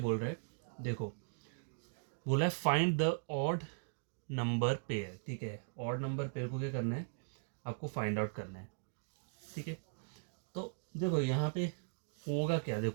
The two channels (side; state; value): left; silent; digital silence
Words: रहा है, देखो, बोला है find the odd number pair, ठीक है। ऑड नंबर पेयर को क्या करना है, आपको फाइंड आउट करना है, ठीक है। तो देखो यहाँ पे होगा क्या,